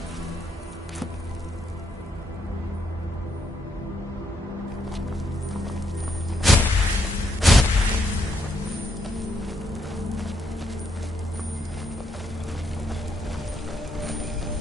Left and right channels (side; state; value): both; normal; correlation 0.75